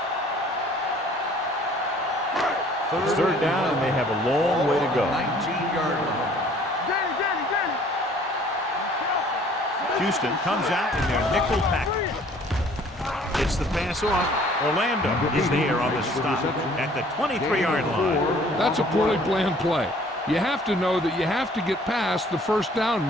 It's third down, and they have a long way to go. 19-yard line. Houston comes out in their nickel package. Gets the pass off. Orlando is there on the stop at the 23-yard line. That's a poorly planned play. You have to know that you have to get past the first down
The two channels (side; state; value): both; normal; correlation 0.55